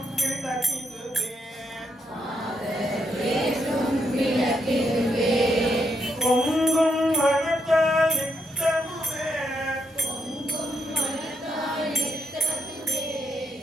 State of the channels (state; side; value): normal; both; correlation 0.78